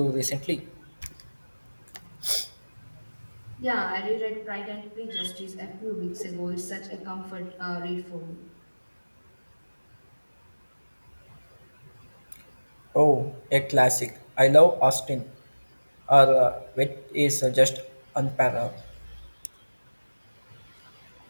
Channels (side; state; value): both; inverted; correlation -1.00